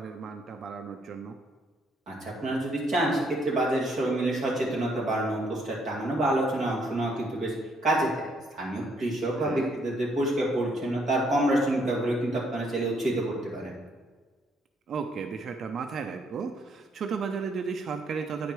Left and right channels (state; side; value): normal; both; correlation 0.70